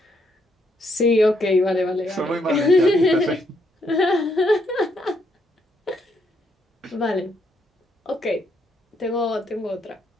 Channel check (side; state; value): both; normal; correlation 0.74